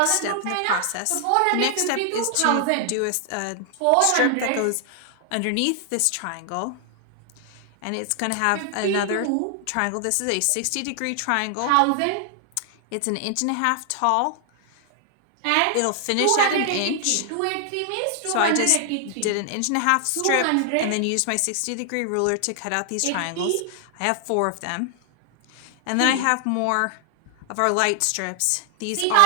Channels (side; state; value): both; different; correlation 0.00